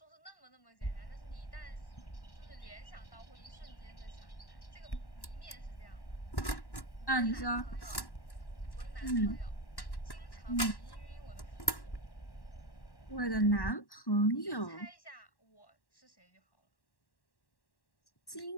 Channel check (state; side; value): late; right; 1.1 ms